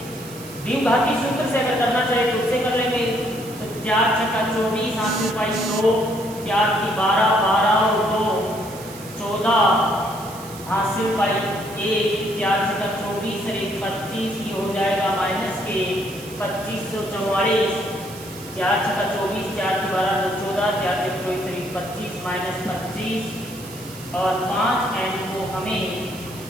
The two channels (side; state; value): right; noise; hiss, 16 dB below the sound